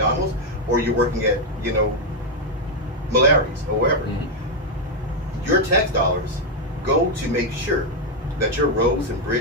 or you're working at Malari's or wherever. Mm-hmm. Your tax dollars go to make sure that your roads and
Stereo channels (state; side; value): normal; both; correlation 0.02